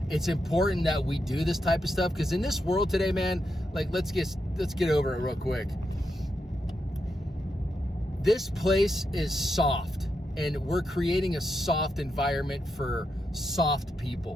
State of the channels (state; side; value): normal; both; correlation 0.84